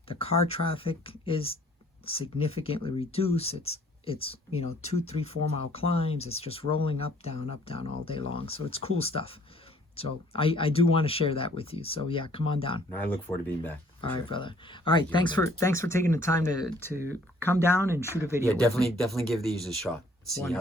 The car traffic is significantly reduced. It's 2, 3, 4 mile climbs. It's just rolling up, down all day long. So it's cool stuff. So I do want to share that with you. So yeah, come on down. And I look forward to being back. for All right, sure. brother. All right, thanks for taking the time to come down and shoot a video. Yeah, with me. definitely give these a shot. See how they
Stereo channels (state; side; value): normal; both; correlation 0.59